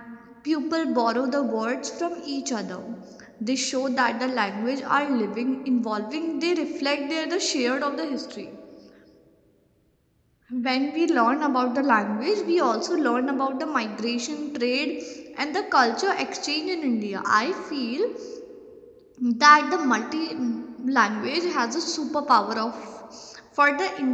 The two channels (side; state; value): both; identical; correlation 1.00